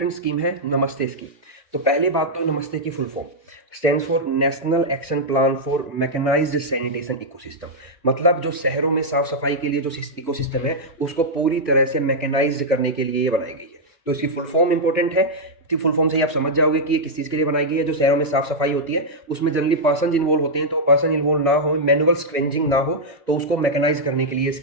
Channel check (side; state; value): both; normal; correlation -0.05